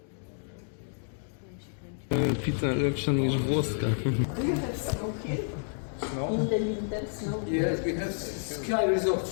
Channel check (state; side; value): silent; right; 58 dB below the other